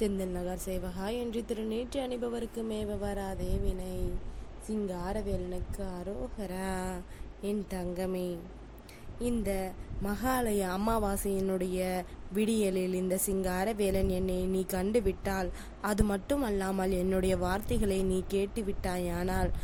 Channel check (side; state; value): both; identical; correlation 1.00